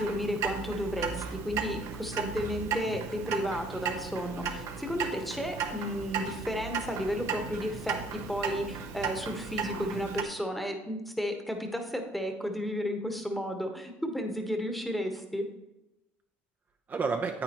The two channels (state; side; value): normal; both; correlation 0.63